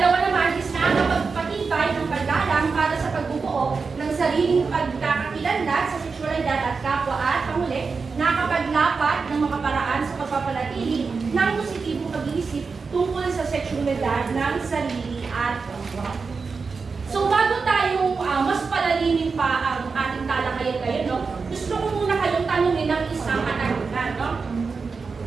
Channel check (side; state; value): left; quieter; 4.8 dB